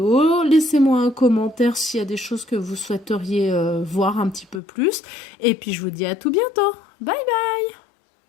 Laissez-moi un commentaire s'il y a des choses que vous souhaiteriez voir un petit peu plus. Et puis je vous dis à tout bientôt. Bye bye.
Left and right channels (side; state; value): right; drops out; at 4.6 s